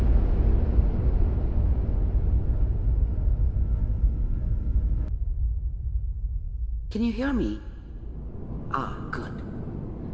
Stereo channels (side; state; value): both; identical; correlation 1.00